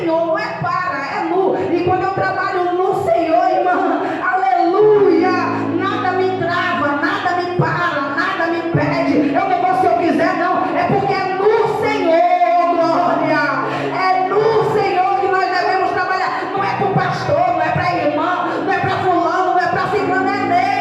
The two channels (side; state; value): both; identical; correlation 1.00